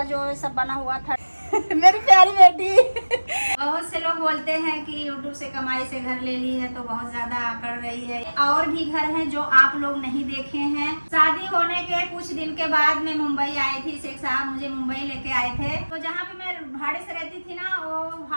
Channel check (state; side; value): inverted; both; correlation -1.00